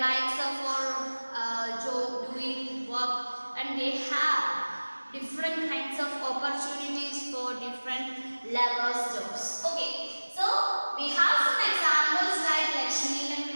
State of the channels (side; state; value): both; inverted; correlation -1.00